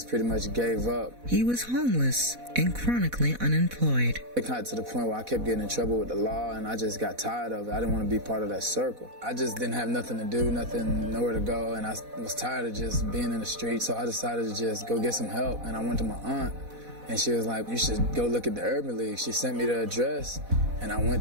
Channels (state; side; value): late; left; 4.1 ms